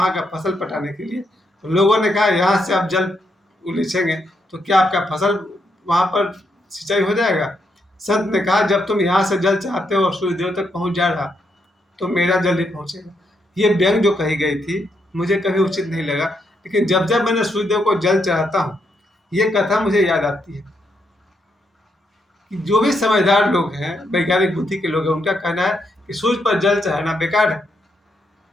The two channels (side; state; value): both; normal; correlation 0.79